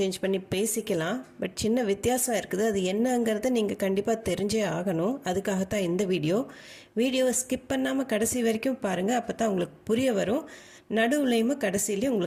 பண்ணி பேசிக்கலாம். பட் சின்ன வித்தியாசம் இருக்குது. அது என்னங்கிறது நீங்கள் கண்டிப்பாக தெரிஞ்சே ஆகணும். அதுக்காகத்தான் இந்த வீடியோவை ஸ்கிப் பண்ணாமல் கடைசி வரைக்கும் பாருங்கள். அப்போ தான் உங்களுக்கு புரிய வரும். நடுவுலையுமே கடைசியிலையும்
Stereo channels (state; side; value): identical; both; correlation 1.00